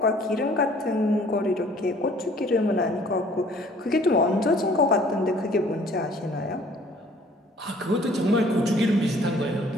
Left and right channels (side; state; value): both; normal; correlation 0.55